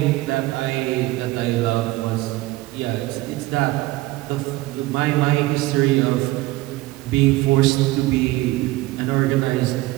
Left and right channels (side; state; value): left; quieter; 18.9 dB